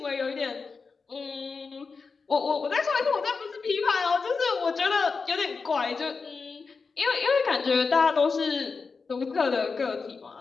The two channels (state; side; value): quieter; right; 4.8 dB